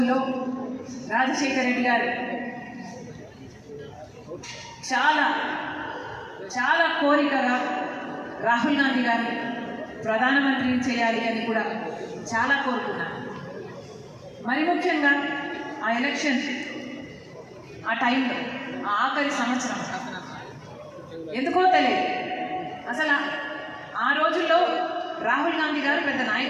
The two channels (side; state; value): both; identical; correlation 1.00